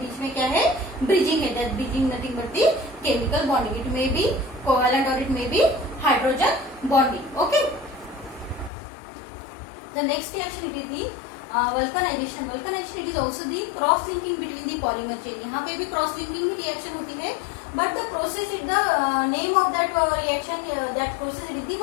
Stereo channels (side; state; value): right; drops out; at 8.7 s